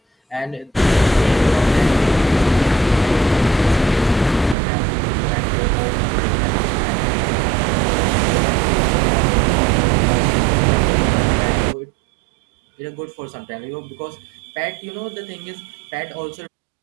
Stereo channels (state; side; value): drops out; left; at 4.5 s